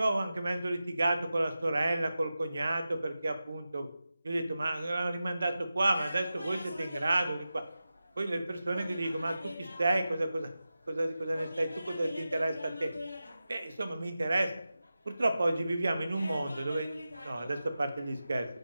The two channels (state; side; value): inverted; both; correlation -0.93